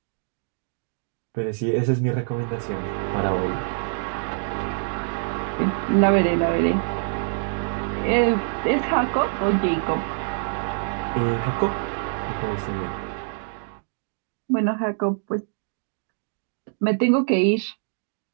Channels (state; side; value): silent; left; digital silence